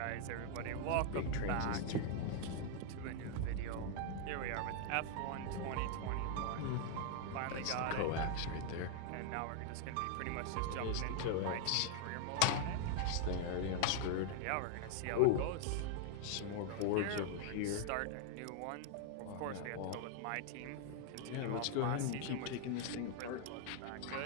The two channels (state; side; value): different; both; correlation 0.00